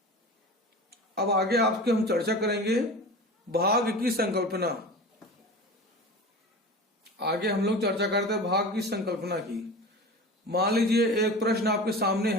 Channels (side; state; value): both; normal; correlation 0.33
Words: अब आगे आपके हम चर्चा करेंगे भाग की संकल्पना। आगे हम लोग चर्चा करते हैं भाग की संकल्पना की। मान लीजिए एक प्रश्न आपके सामने